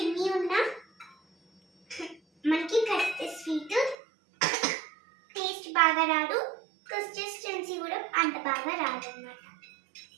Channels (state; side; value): drops out; left; at 4.0 s